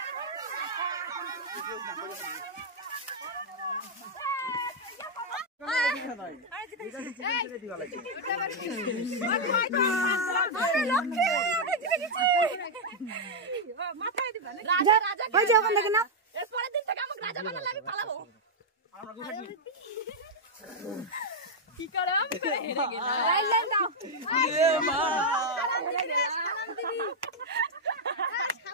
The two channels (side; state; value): both; normal; correlation -0.02